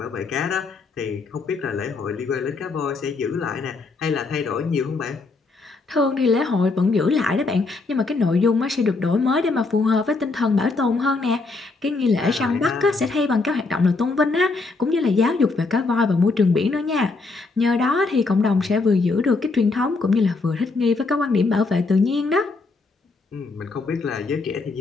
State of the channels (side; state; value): right; quieter; 3.8 dB